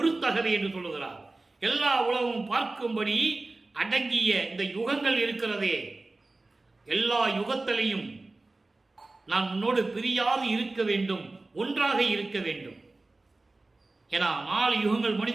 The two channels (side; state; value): left; quieter; 3.2 dB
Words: என்று சொல்லுகிறார். எல்லா உலகமும் பார்க்கும்படி அடங்கிய இந்த யுகங்கள் இருக்கிறதே, எல்லா யுகத்திலையும் நான் உன்னோடு பிரியாது இருக்க வேண்டும், ஒன்றாக இருக்க வேண்டும். ஏன்னா 4 யுகங்கள்